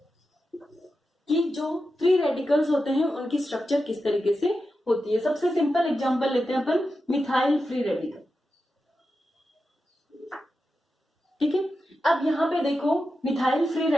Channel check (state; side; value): normal; both; correlation 0.90